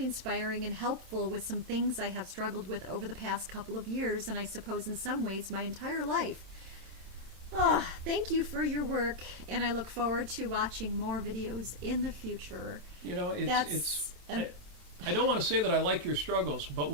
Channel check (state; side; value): late; left; 27 ms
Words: inspiring and helpful with some things I have struggled with over the past couple of years, and I suppose in some ways my entire life. Thank you for your work, and I look forward to watching more videos in the future." You know, I don't want to say that I like your struggles, but